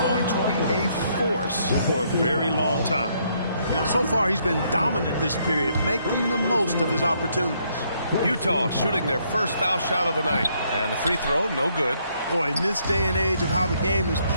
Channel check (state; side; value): inverted; both; correlation -0.71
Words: to be a force for a very long time. You know, so far he's been dominant this period, making the most of his opportunities. Utah shooting their first foul shot of the night. And the free throw, no good. Boy, in this day and age of how the game is